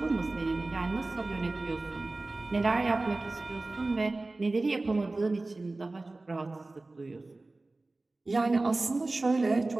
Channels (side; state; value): left; quieter; 3.1 dB